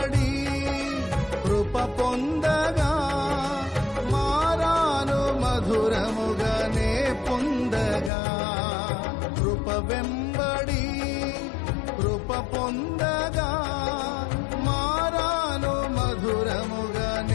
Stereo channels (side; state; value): right; drops out; at 8.1 s